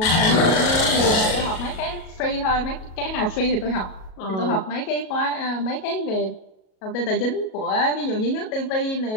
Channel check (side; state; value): right; late; 37 ms